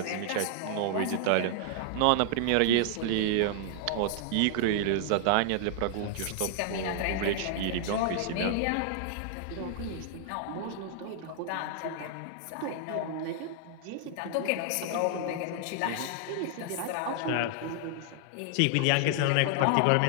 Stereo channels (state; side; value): different; both; correlation 0.00